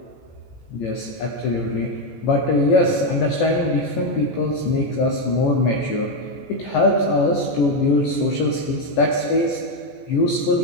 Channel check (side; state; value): right; late; 14 ms